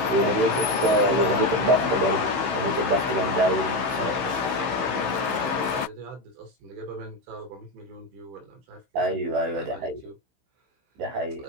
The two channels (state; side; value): late; left; 15 ms